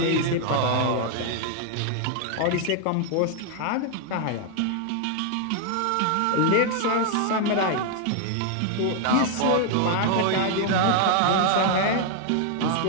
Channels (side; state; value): both; different; correlation 0.00